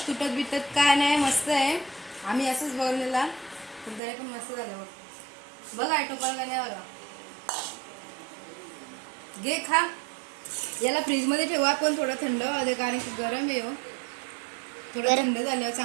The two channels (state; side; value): drops out; left; at 4.0 s